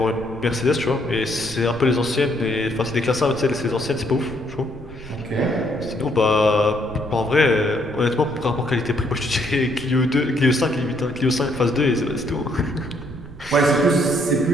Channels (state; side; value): noise; right; rumble, 17 dB below the sound